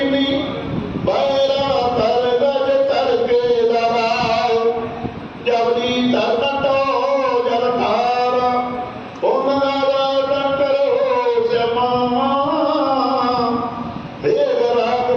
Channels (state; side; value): identical; both; correlation 1.00